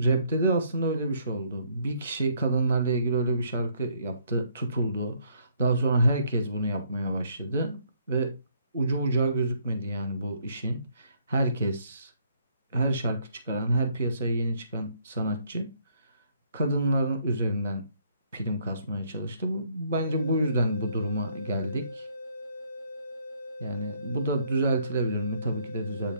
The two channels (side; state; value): both; inverted; correlation -0.67